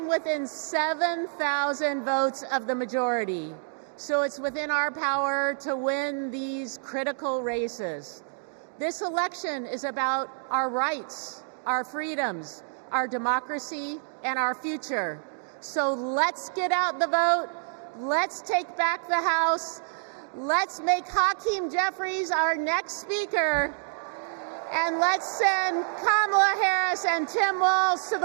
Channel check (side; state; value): left; silent; digital silence